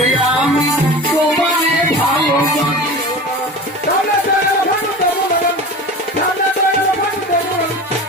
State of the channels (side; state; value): both; normal; correlation 0.34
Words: আমি তোমারে ভালোবাসি